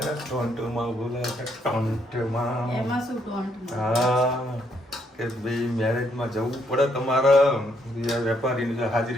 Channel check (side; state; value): both; normal; correlation 0.72